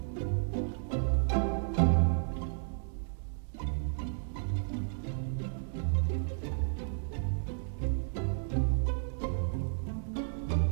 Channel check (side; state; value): left; silent; digital silence